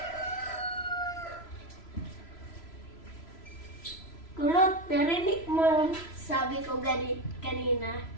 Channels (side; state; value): right; late; 3.0 ms